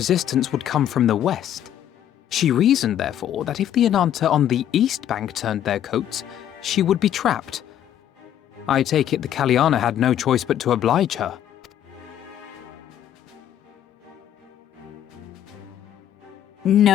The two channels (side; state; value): right; quieter; 10.8 dB